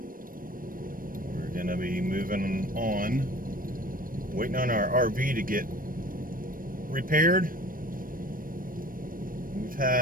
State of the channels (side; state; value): left; late; 0.41 ms